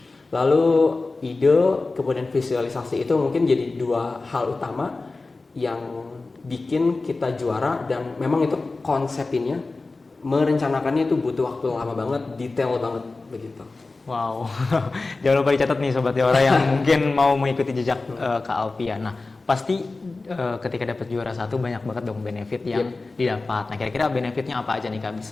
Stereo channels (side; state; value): right; quieter; 3.5 dB